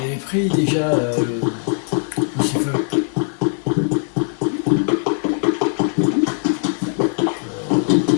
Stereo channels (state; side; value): silent; right; 63 dB below the other